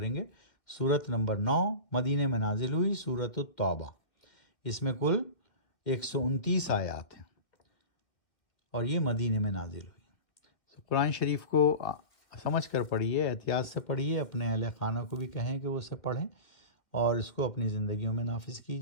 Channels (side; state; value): right; late; 2.2 ms